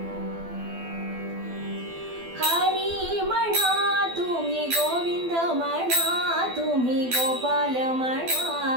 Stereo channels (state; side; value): late; left; 12 ms